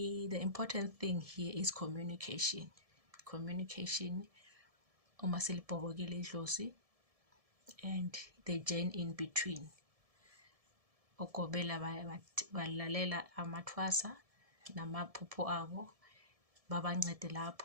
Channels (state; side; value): late; left; 1.7 ms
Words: important thing here is communication. Communication, uma silibhobokile idlozi, and the journey in between. Ogobela balalela amathwasa namaphupho abo, babancede